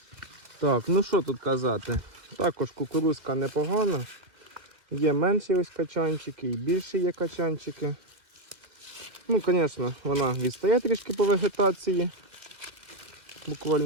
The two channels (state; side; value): late; left; 2.2 ms